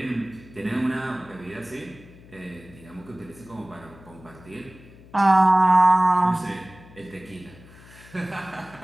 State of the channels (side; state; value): left; noise; hum, 22 dB below the sound